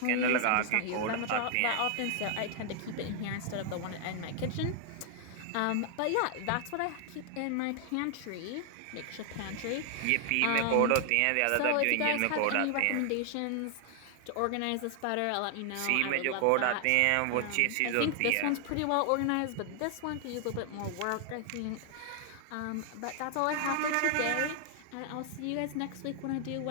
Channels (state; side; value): different; both; correlation 0.00